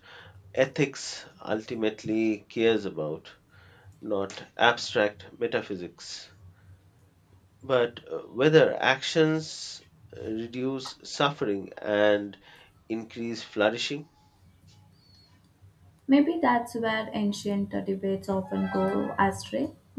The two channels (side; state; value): both; identical; correlation 1.00